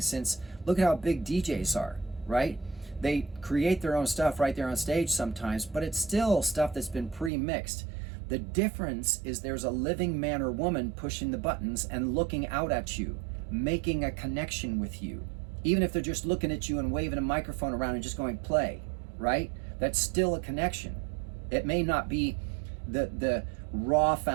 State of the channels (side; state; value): left; drops out; at 7.3 s